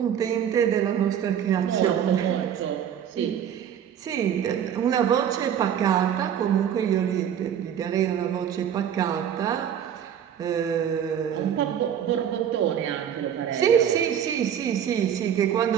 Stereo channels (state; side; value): quieter; left; 9.1 dB